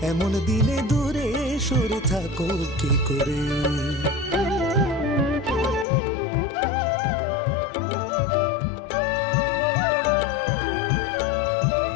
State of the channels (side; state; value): right; drops out; at 5.9 s